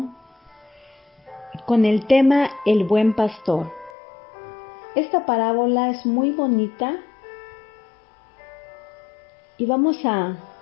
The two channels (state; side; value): drops out; right; at 3.9 s